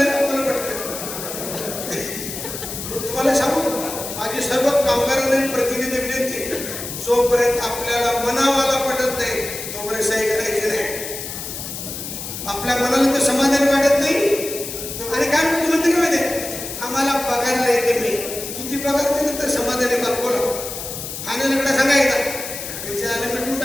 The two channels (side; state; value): left; noise; hiss, 8 dB below the sound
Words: मला पटकन. तुम्हाला सांगू, माझी सर्व कामगारांना प्रतिनिधी विनंती, जोपर्यंत आपल्याला मनावाला पटत नाही तोपर्यंत सही करायची नाही. आपल्या मनाला तर समाधान वाटत नाही. आणि काय म्हणते का माहिती, आम्हाला पगारला येते मी, किती पगार दिले तर समाधानी बाप बोला. फायनलकडे सांगायचं त्याच्या आले मिटून